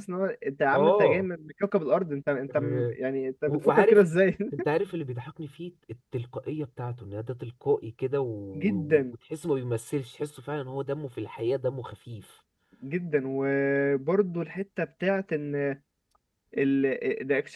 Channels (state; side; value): identical; both; correlation 1.00